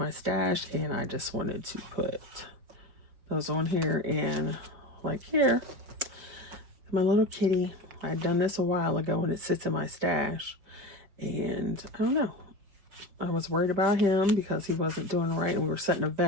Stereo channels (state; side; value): late; left; 5.1 ms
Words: stash, and I just wanted to put those on here. And like here, my little kitty. I had done this a while ago, and it sits in my stash. And I don't know. I was worried about him because he wasn't doing right, and we were setting a